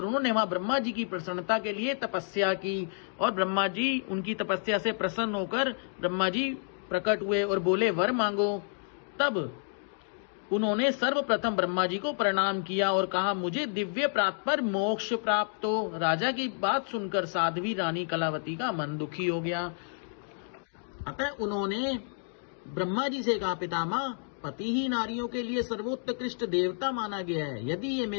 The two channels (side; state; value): right; silent; digital silence